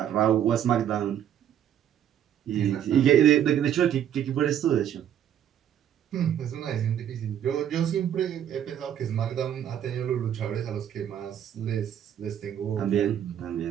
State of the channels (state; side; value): quieter; left; 10.1 dB